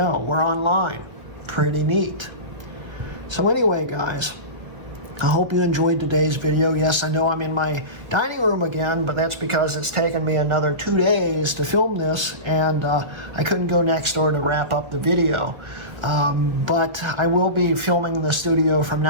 we're online. Pretty neat. So anyway, guys, I hope you enjoyed today's video. Yes, I know I'm in my dining room again, but that's because it's taken me another 2 days to film this, and I couldn't go next door to wrap up the video. But I will be filming in the studio from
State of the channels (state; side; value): late; left; 1.8 ms